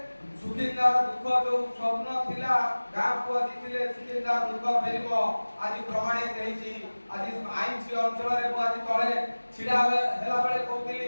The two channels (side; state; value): both; inverted; correlation -1.00